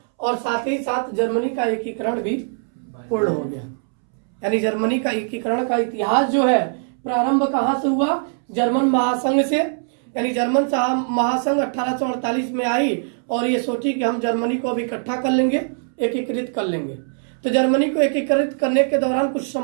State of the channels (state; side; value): silent; left; 65 dB below the other